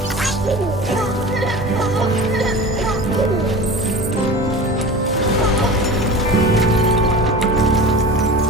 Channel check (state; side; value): normal; both; correlation 0.35